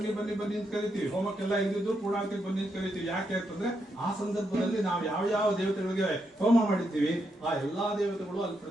ಬನ್ನಿ ಬನ್ನಿ ಅಂತ ಕರಿತೀವಿ. ಹೋಮಕ್ಕೆಲ್ಲ ಇದ್ದಿದ್ದು ಪೂರ್ಣಾಹುತಿ ಬನ್ನಿ ಅಂತ ಕರಿತೀವಿ. ಯಾಕೆ ಅಂತಂದ್ರೆ ಆ ಸಂದರ್ಭದಲ್ಲಿ ನಾವು ಯಾವ ಯಾವ ದೇವತೆಗಳಿಗೆ ಹೋಮ ಮಾಡಿರ್ತೀವಿ ಆ ಎಲ್ಲಾ ದೇವತೆಗಳು ಅಲ್ಲಿ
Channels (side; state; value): both; normal; correlation 0.81